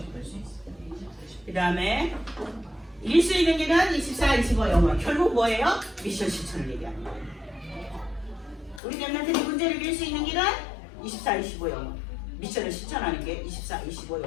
수 있어요. 그 다음에 일수 있는 길은 24, 25 영원. 결국 뭐예요? 미션 실천을 얘기하는 거예요. 우리 랩런트들이 문제를 이길 수 있는 길은 24, 25 영원. 미션을 실천하는 게 24, 25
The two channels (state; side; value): drops out; right; at 8.8 s